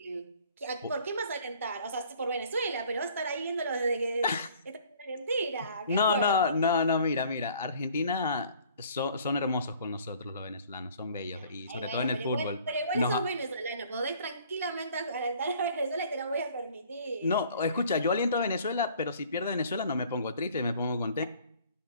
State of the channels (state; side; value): inverted; both; correlation -0.54